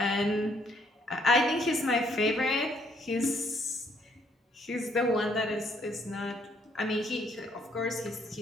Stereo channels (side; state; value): both; normal; correlation 0.68